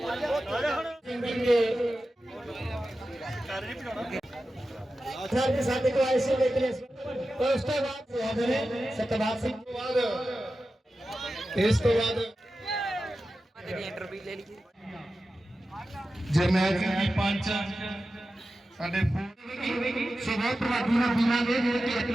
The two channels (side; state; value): both; normal; correlation 0.93